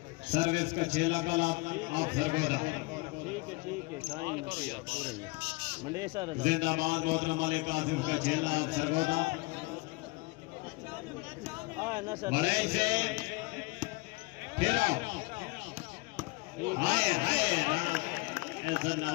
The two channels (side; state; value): right; quieter; 25.1 dB